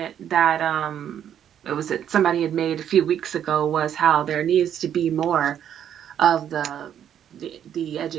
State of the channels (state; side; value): quieter; left; 9.6 dB